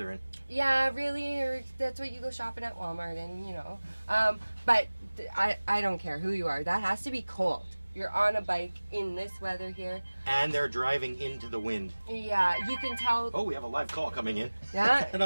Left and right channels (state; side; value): inverted; both; correlation -1.00